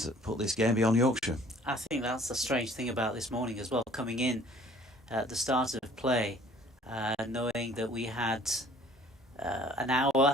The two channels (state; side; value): normal; both; correlation 0.54